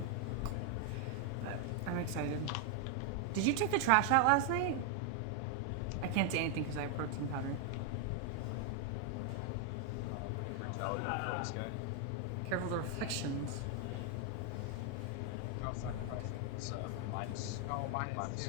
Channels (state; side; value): different; both; correlation 0.00